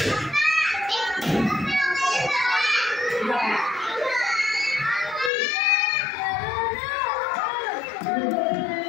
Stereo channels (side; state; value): right; drops out; at 5.3 s